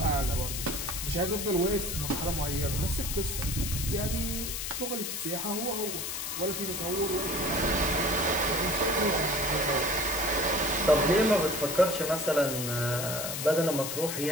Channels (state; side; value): noise; left; hiss, 4 dB below the sound